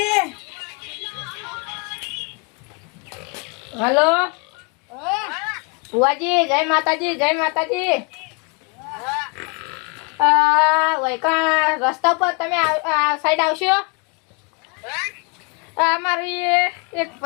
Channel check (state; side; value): quieter; right; 34.1 dB